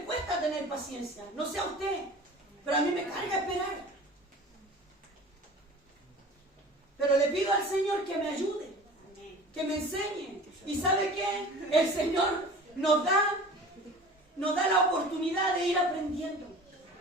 cuesta tener paciencia. No sé a usted, pero a mí me carga esperar. Pero le pido al Señor que me ayude, que me enseñe. ¿Y sabe qué? El Señor nos da la oportunidad de ir aprendiendo.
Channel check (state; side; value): normal; both; correlation 0.41